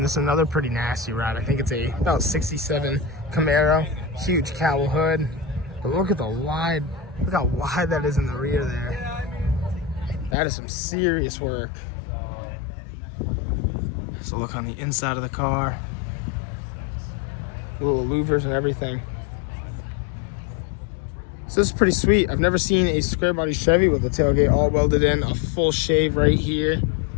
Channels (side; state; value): right; drops out; at 10.4 s